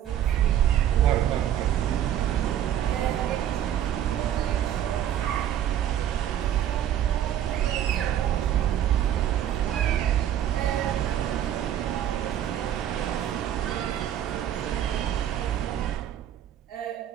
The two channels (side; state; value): left; quieter; 10.8 dB